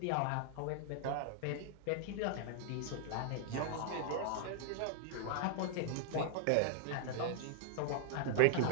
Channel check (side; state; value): both; different; correlation 0.00